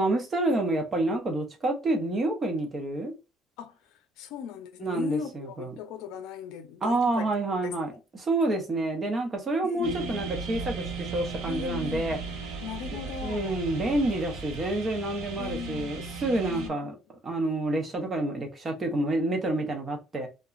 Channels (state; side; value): normal; both; correlation 0.64